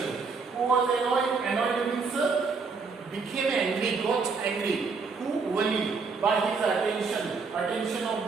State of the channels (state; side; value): quieter; left; 4.8 dB